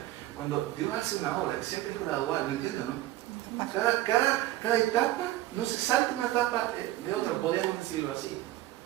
Cuando Dios hace una obra, siempre es gradual, ¿me entienden, no? Cada etapa no se salta una etapa de otra, podemos decirlo así.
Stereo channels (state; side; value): quieter; left; 15.6 dB